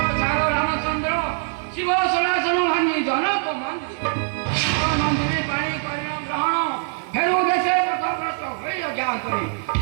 झार रामचंद्र शिव सनातन भांगी जनक मंदिर मंदिर पाणी कन्या ग्रहण फेरु देशे पथभ्रष्ट होई अज्ञा करी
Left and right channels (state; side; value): silent; left; digital silence